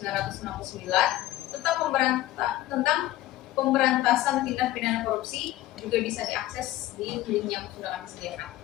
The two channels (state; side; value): quieter; right; 15.4 dB